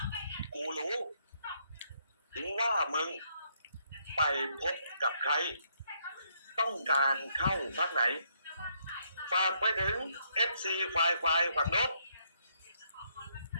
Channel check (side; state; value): both; inverted; correlation -0.73